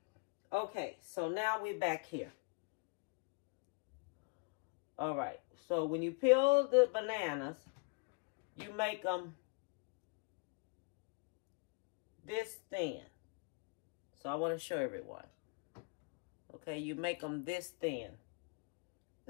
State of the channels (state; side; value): quieter; right; 31.4 dB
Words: Okay, so now we're back here. All right, so when you peel the bananas, you make them this thin. So I want to show everyone. Okay, you make them this thin.